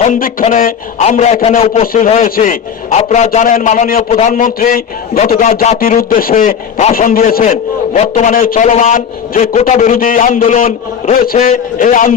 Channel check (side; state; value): right; quieter; 7.5 dB